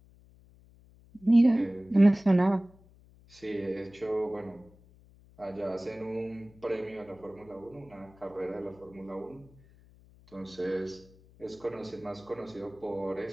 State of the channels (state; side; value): noise; left; hum, 26 dB below the sound